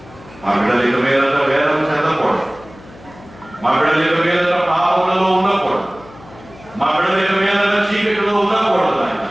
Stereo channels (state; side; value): noise; left; hum, 22 dB below the sound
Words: మా బిడ్డలు ఇక మీదట వేదం చెందకూడదు, మా బిడ్డలు ఇక మీదట పాపములలో ఉండకూడదు, మా బిడ్డలు ఇక మీదట చీకటిలో ఉండకూడదు ఆయన.